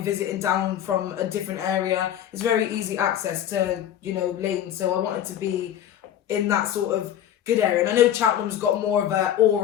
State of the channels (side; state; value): right; quieter; 10.7 dB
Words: down from a different area. It's very easy access to, you know, lanes. So I wanted to be in that sort of good area. And I know Cheltenham's got more of an